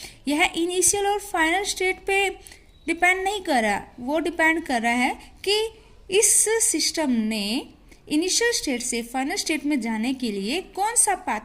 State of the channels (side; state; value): both; identical; correlation 1.00